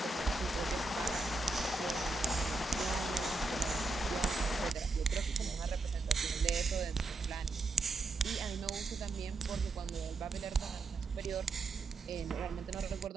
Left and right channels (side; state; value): left; quieter; 3.3 dB